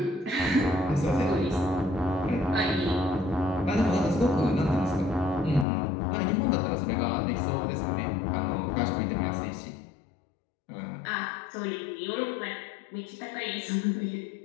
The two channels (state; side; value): drops out; right; at 5.7 s